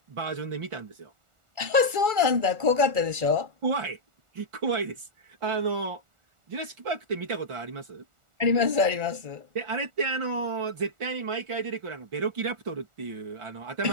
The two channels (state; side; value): late; left; 1.4 ms